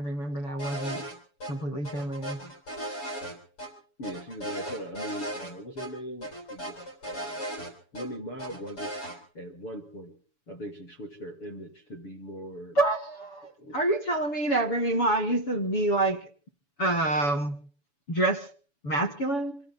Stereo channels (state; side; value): late; right; 7.0 ms